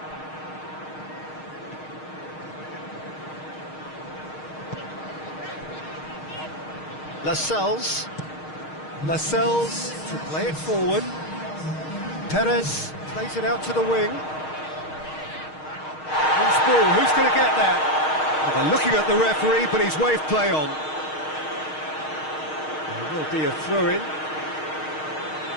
Lascelles. Lascelles to play it forward. Perez plays it out to the wing. Loose ball, who's going to get that? Well, they're looking at the referee, but he's waved play on. There will be a throw-in.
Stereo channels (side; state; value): right; late; 6.4 ms